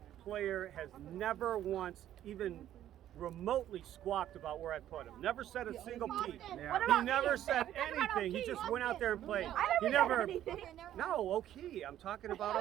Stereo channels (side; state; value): left; quieter; 11.9 dB